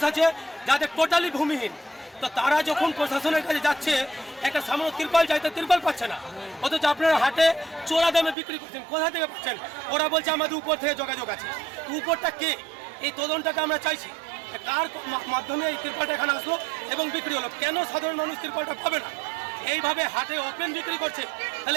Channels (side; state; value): left; drops out; at 8.3 s